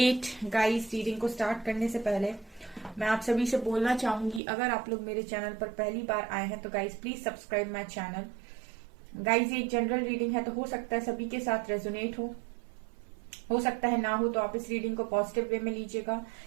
Guys, reading को start करने से पहले मैं आप सभी से बोलना चाहूंगी, अगर आप लोग मेरे चैनल पर पहली बार आए हैं तो guys please subscribe my channel. Guys, ये एक जनरल रीडिंग है तो हो सकता है सभी के साथ रेजोनेट हो सकता है ना हो, तो आप इस रीडिंग को पॉजिटिव वे में लीजिएगा।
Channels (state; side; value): drops out; left; at 4.4 s